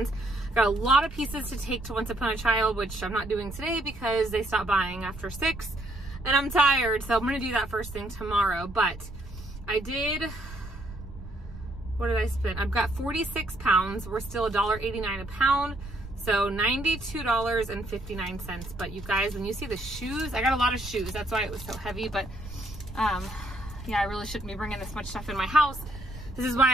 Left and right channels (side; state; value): right; noise; rumble, 13 dB below the sound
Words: Got a lot of pieces to take to Once Upon a Child, which I'm not doing today because they stopped buying after 6 and I'm tired. So I'm gonna do that first thing tomorrow. But I did, what did I spend? I've got 46 pounds. We're still $1.89 a pound. So $92.59. But you guys, when you see the shoes, I got a lot of shoes. That's why it was so heavy. But yeah, I really shouldn't be bringing this much stuff in my house. This is